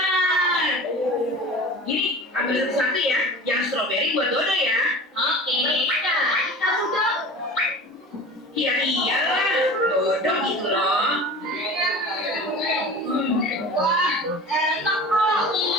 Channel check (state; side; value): normal; both; correlation 0.37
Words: Gini, ambil satu-satu ya. Yang stroberi buat Dodo ya. Oke. Kamu, Dok. Iya iyalah, Dodo gitu loh. Wah, enak kok.